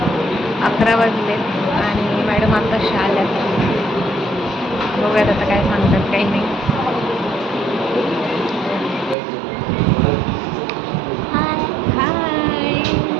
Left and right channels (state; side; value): drops out; left; at 9.2 s